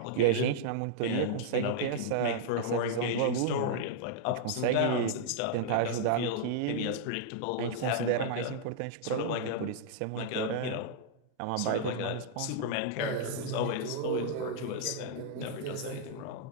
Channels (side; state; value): both; different; correlation -0.01